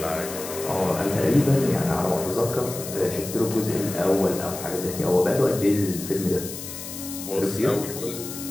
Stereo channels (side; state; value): left; noise; hiss, 10 dB below the sound